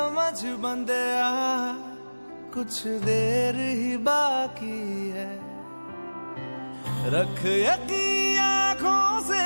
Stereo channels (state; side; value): inverted; both; correlation -1.00